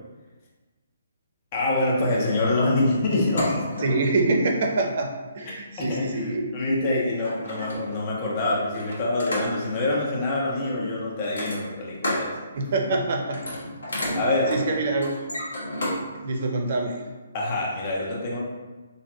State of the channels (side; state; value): both; inverted; correlation -0.64